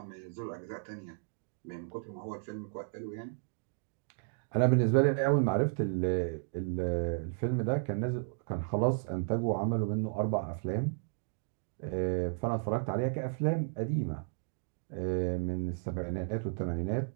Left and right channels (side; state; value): left; silent; digital silence